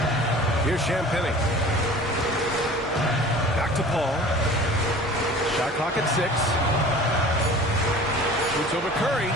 Here's Champagnie. Back to Paul. Shot clock at 6. Shoots over Curry.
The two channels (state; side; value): normal; both; correlation 0.43